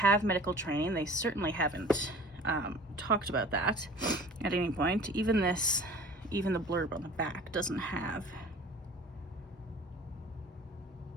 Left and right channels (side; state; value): both; normal; correlation 0.45